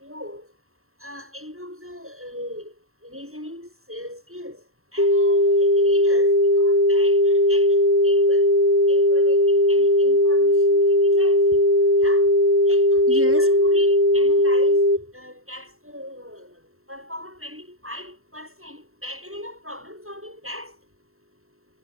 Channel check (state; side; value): late; left; 0.62 ms